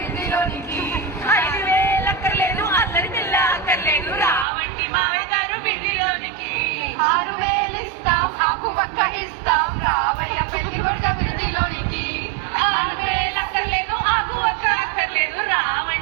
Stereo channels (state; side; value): drops out; left; at 4.5 s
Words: 5000 అక్కర్లేదు అల్లరి పిల్ల అక్కర్లేదు రావండి మామగారు విడిదిలోనికి 6000 ఇస్తాం ఆకు పక్క ఇస్తాం రావయ్య పెళ్లి కొడుకు అభివృద్ధిలోనికి 6000 అక్కర్లేదు ఆకు ఒక్క అక్కర్లేదు